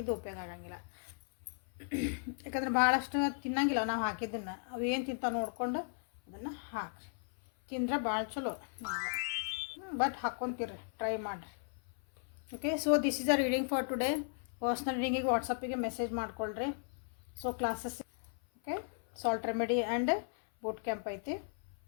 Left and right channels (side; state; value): right; silent; 54 dB below the other